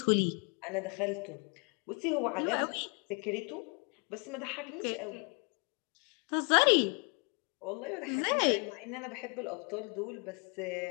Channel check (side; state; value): right; quieter; 34.7 dB